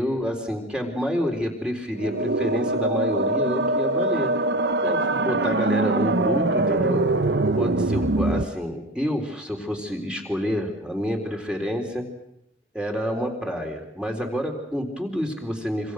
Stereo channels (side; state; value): both; normal; correlation 0.35